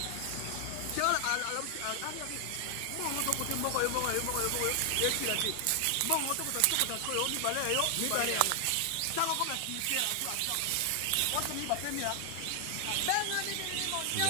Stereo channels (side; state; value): both; different; correlation 0.00